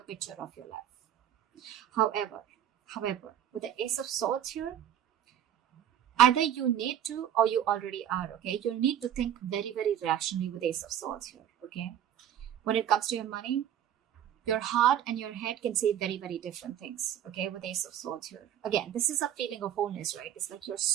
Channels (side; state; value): left; quieter; 10.5 dB